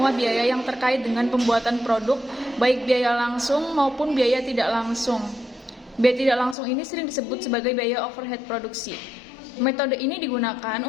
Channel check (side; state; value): right; drops out; at 6.6 s